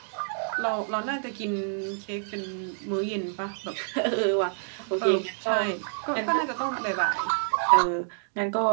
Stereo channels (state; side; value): silent; left; digital silence